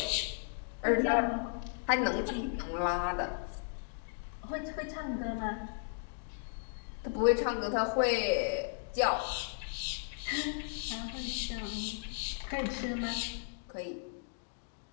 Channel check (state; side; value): silent; right; digital silence